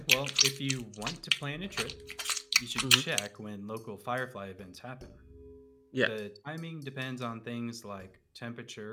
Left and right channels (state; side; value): identical; both; correlation 1.00